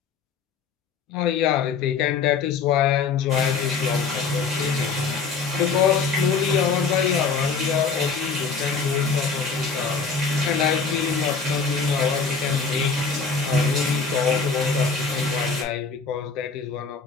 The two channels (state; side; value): quieter; right; 5.1 dB